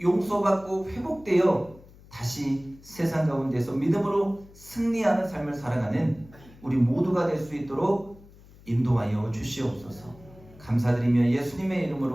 용서받고 회복되어 다시 세상 가운데서 믿음으로 승리하는 삶을 살아가는 우리 모두가 될 수 있도록 인도하여 주시옵소서. 감사드리며 예수님의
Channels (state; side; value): noise; left; hum, 23 dB below the sound